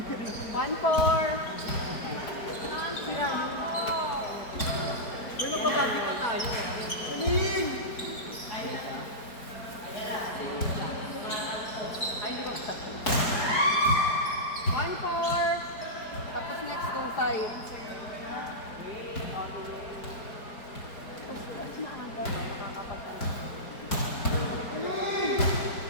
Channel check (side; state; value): right; late; 4.7 ms